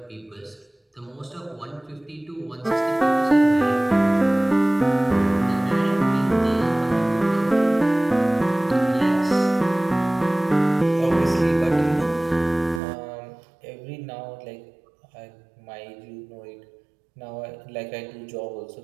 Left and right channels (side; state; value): left; drops out; at 12.8 s